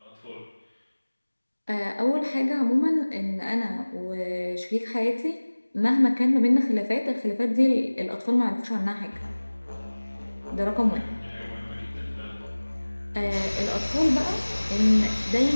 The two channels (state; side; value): inverted; both; correlation -1.00